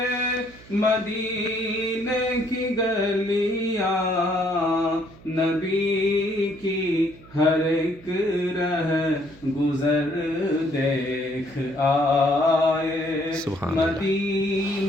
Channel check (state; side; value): noise; right; hum, 22 dB below the sound